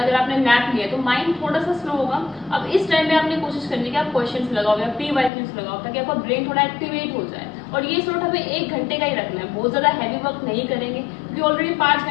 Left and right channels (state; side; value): drops out; right; at 5.3 s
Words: अगर आपने नैप लिया तो माइंड थोड़ा सा स्लो होगा। अब इस टाइम में आपने कोशिश करनी है कि आप क्वेश्चंस लगाओ या PYQs लगाओ, ताकि आपका ब्रेन थोड़ा एक्टिवेट हो जाए। और ये स्लॉट हमें 1 घंटे का ही रखना है, बहुत ज्यादा हैवी वर्क नहीं करेंगे, क्योंकि ऑलरेडी 5